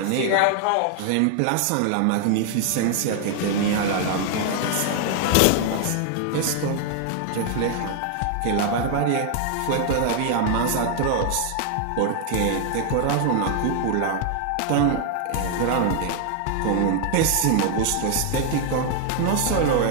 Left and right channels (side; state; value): both; different; correlation 0.00